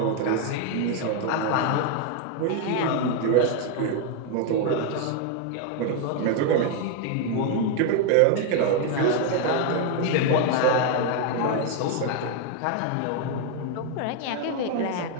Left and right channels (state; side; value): different; both; correlation 0.01